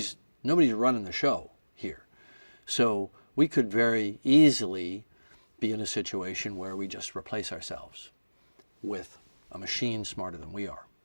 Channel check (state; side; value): inverted; both; correlation -1.00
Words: running the show here. So we could very easily be in a situation where we just replace ourselves with a machine smarter than we are.